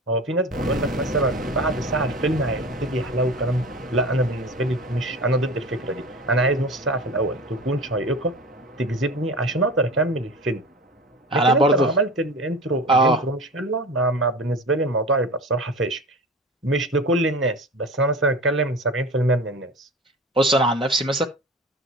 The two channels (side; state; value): both; normal; correlation 0.34